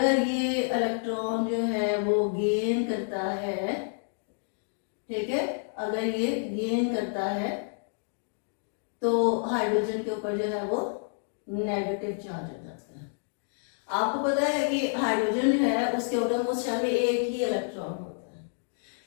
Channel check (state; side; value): silent; right; digital silence